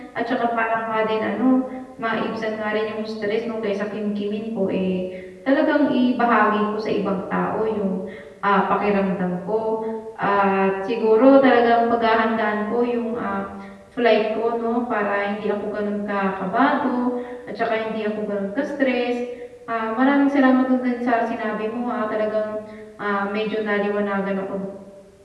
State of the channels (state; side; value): identical; both; correlation 1.00